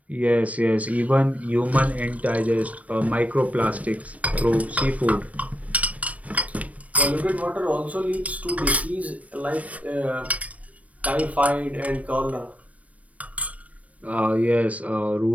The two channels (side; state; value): left; late; 0.067 ms